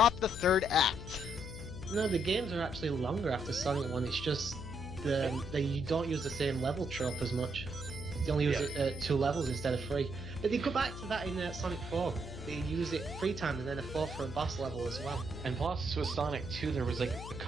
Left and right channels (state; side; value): noise; left; hum, 10 dB below the sound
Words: the 3rd act. No, the games are actually longer after Sonic 1, it's just you don't use the same level trope as much. They only use it 2 levels instead of 3. But they go back to that in Sonic 4. They use it 3 times and then a 4 for a boss level as well. And plus, with Sonic 2, there was like a